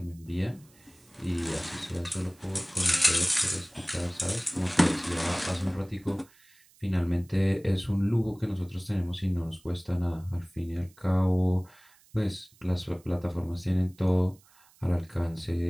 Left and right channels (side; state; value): right; noise; hiss, 29 dB below the sound